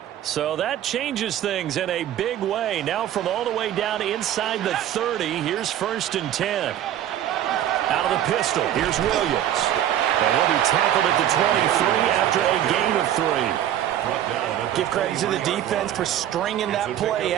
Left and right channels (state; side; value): quieter; left; 11.4 dB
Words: So that changes things in a big way. Now from all the way down inside the 30, here's 1st and 10. Out of the pistol, here's Williams. And he'll be tackled at the 23 after a gain of 3. Give credit to the defense for stringing that play